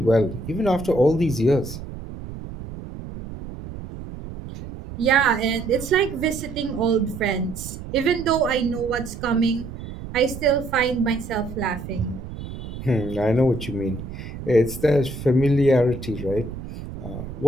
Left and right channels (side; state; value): right; noise; rumble, 11 dB below the sound